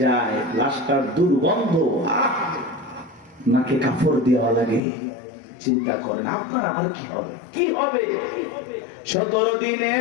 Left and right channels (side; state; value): right; drops out; at 4.8 s